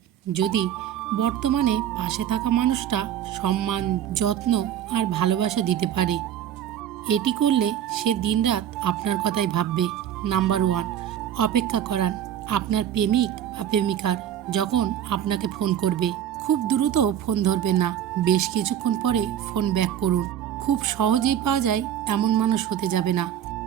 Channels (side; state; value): left; quieter; 10.2 dB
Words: যদি বর্তমানে পাশে থাকা মানুষটা সম্মান, যত্ন আর ভালোবাসা দিতে পারে। এটি করলে সে দিনরাত আপনার কথাই ভাববে। নাম্বার 1, অপেক্ষা করান আপনার প্রেমিক বা প্রেমিকার যখন আপনাকে ফোন করবে। খুব দ্রুত ফোন ধরবেন না, বেশ কিছুক্ষণ পরে ফোন ব্যাক করুন। খুব সহজেই পাওয়া যায় এমন মানুষ হতে যাবে না,